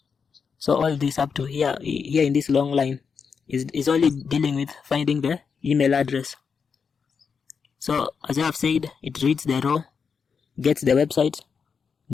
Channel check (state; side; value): quieter; right; 5.9 dB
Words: So all this up to here in this long line is only dealing with finding the email address. So as I have said, it reads the row, gets the website.